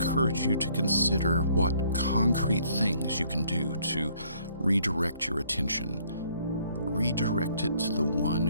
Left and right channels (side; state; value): both; inverted; correlation -0.63